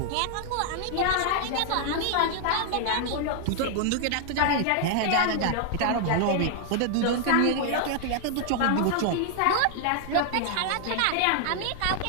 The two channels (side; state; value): both; different; correlation 0.00